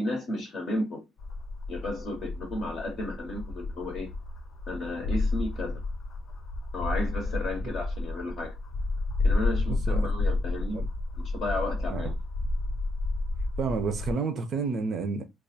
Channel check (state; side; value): normal; both; correlation 0.79